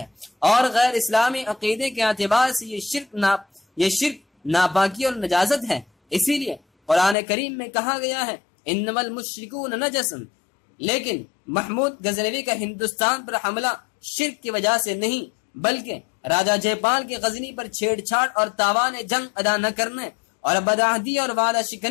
اور غیر اسلامی عقیدے کے اعتبار سے یہ شرک ناپاکی اور نجاست ہے۔ اسی لیے قرآن کریم میں کہا گیا ہے انما المشرکون نجس، لیکن محمود غزنوی کا ہندوستان پر حملہ شرک کی وجہ سے نہیں، بلکہ راجہ جے پال کے غزنی پر چھیڑ چھاڑ اور تاوان جنگ ادا نہ کرنے اور بدعہدی اور وعدہ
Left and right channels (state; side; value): drops out; right; at 7.2 s